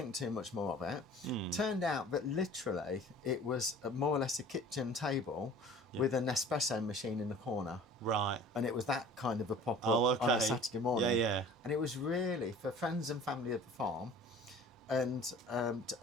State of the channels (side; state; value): both; normal; correlation 0.45